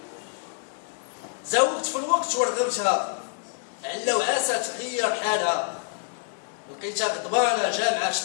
زوقت في الوقت ورغبتها، علا وعاسة تغير حالها، لقيتها غضبانة جامعة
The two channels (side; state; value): right; silent; digital silence